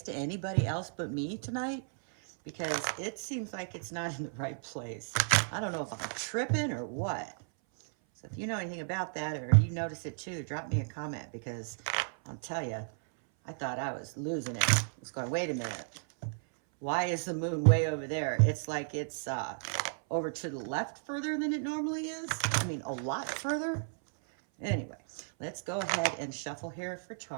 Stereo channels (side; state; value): left; silent; 55 dB below the other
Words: to anybody else but me tonight? Because it seems like it's not in the right place. I don't know if I'm tripping or what. So if you know anything about that, or you notice it too, drop me a comment, because I'll tell you, I thought I was losing it. I was going, wait a minute. Why is the moon way over there? It's like it's over to the left further than it normally is. I mean, a lot further. Anyway, let's go ahead and shuffle here for